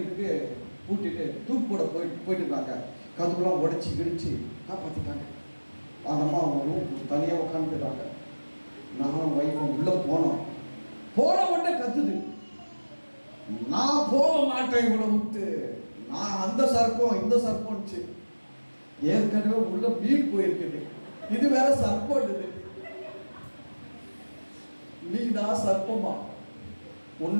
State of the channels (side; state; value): both; inverted; correlation -1.00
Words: பூட்டிட்டு தூக்கு போட போயிட்டு இருக்காங்க. கதுக்குலாம் உடைச்சி கிடிச்சு காப்பாற்றிட்டாங்க. அந்த அம்மா அவங்க தனியாக உட்காந்துருக்காங்க. நானும் ஒய்ஃபும் உள்ள போனோம். போன உடனே கத்துது, நான் போக மாட்டேன் இவ்வளோ விட்டு, நான் அந்த சர்ப்பம் இந்த சர்ப்பம்ச்சு. ஏற்கனவே உள்ள மீன் போயிருக்குது, இது வேற சர்ப்பம். மீனா சர்ப்பமா